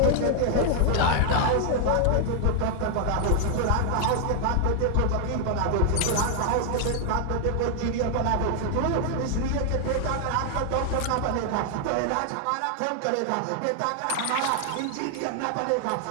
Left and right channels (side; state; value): both; different; correlation 0.00